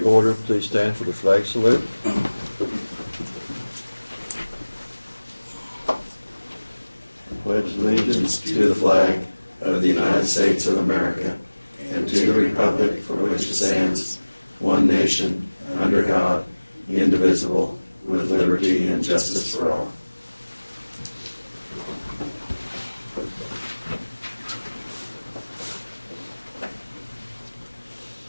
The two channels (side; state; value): both; inverted; correlation -1.00